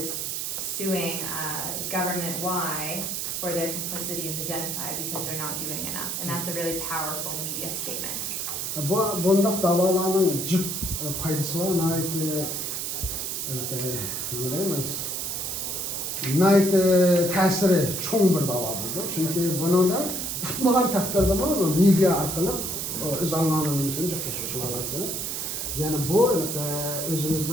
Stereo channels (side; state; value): right; noise; hiss, 3 dB below the sound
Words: suing government Y for their complicity in the genocide because they're not doing enough. And that's a really powerful media statement. Bundak davalarının cık faydası var. Nait tesiri çoğun bir dava buldu. Çünkü bunun da tutmagan takdirde media arkalı öz anlamını cıklaşmış olasını. Yani bu